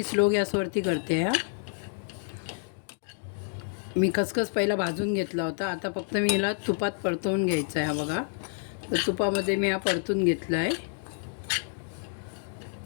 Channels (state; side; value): silent; right; 59 dB below the other